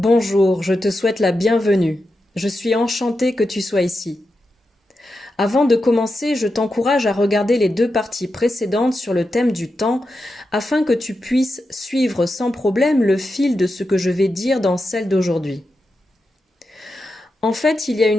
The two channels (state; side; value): normal; both; correlation 0.89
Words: je te souhaite la bienvenue. Je suis enchantée que tu sois ici. Avant de commencer, je t'encourage à regarder les deux parties précédentes sur le thème du temps afin que tu puisses suivre sans problème le fil de ce que je vais dire dans celle d'aujourd'hui. En fait, il y a